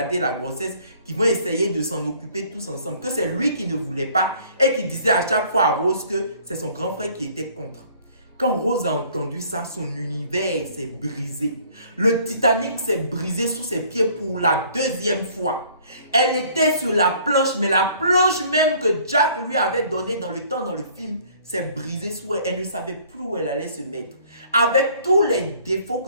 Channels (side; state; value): both; inverted; correlation -0.57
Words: la grossesse, qu'ils vont essayer de s'en occuper tous ensemble. Que c'est lui qui ne voulait pas et qui disait à chaque fois à Rose que c'est son grand frère qui était contre. Quand Rose a entendu ça, son univers s'est brisé. Le Titanic s'est brisé sous ses pieds pour la 2e fois. Elle était sur la planche, mais la planche même que Jack lui avait donnée dans le film s'est brisée sous elle. Elle ne savait plus où elle allait se mettre. Avec tous les défauts